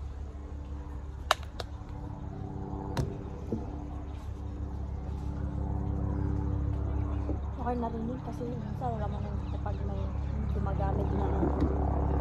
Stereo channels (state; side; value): identical; both; correlation 1.00